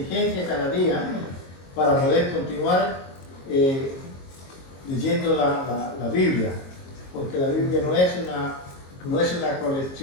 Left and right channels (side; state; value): right; late; 22 ms